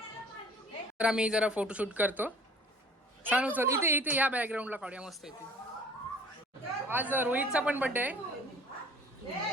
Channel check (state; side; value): normal; both; correlation 0.48